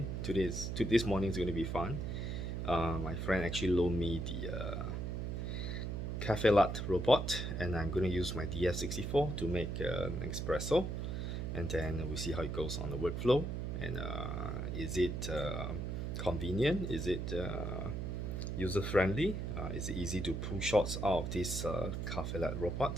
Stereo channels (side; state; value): right; noise; hum, 3 dB below the sound